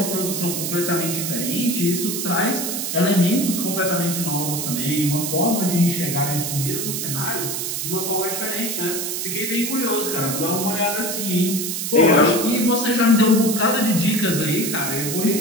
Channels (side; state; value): right; noise; hiss, 3 dB below the sound